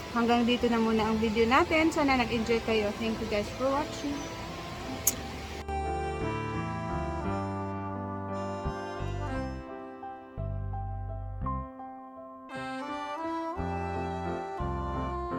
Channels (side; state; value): both; identical; correlation 1.00